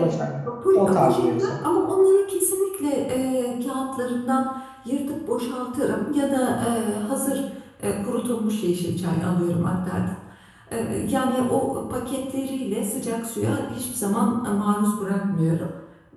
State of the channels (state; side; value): identical; both; correlation 1.00